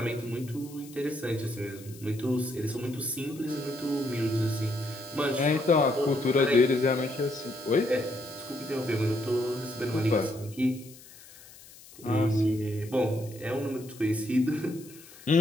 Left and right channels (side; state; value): left; noise; hiss, 20 dB below the sound